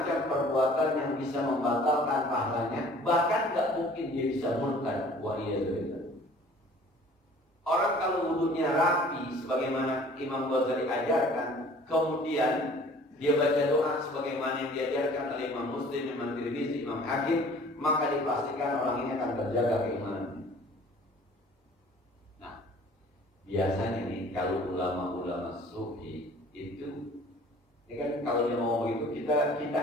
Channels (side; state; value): both; normal; correlation 0.50